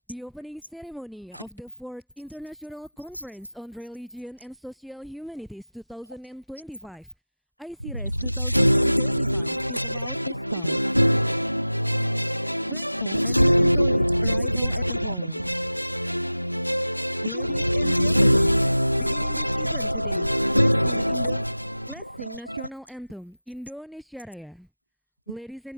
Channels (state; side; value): inverted; both; correlation -0.95